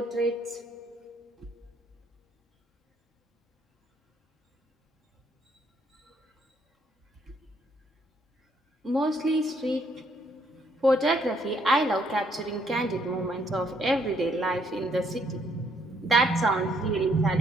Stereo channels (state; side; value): normal; both; correlation 0.69